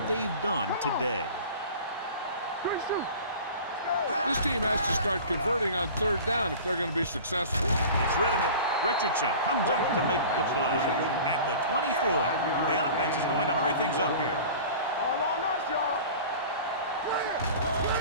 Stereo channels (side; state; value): both; inverted; correlation -0.40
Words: they've done today. This team has to start converting on third down if they're going to be successful. It's rid of it. Richardson comes up to make the play. At the 24, the offense is going to hurry things up here. All on us, y'all.